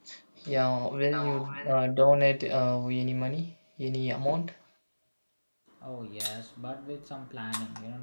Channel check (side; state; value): both; inverted; correlation -1.00